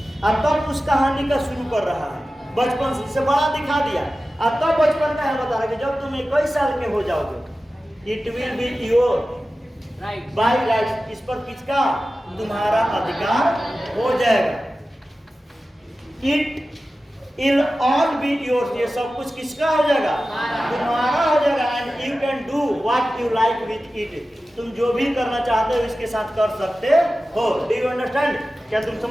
और तब उस कहानी का शुरू कर रहा है, बचपन से बड़ा दिखा दिया, और तब बचपन का है बता रहा है कि जब तुम 21 साल के हो जाओगे, it will be your by right, इस पर किसका, तुम्हारा अधिकार हो जाएगा। It'll all be yours, ये सब कुछ किसका हो जाएगा, तुम्हारा हो जाएगा। And you can do what you like with it, तुम जो भी करना चाहते हो इसके साथ कर सकते हो। डू यू अंडरस्टैंड, क्या तुम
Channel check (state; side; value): normal; both; correlation 0.95